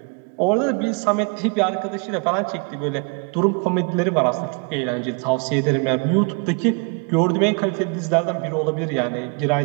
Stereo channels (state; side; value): quieter; left; 35.4 dB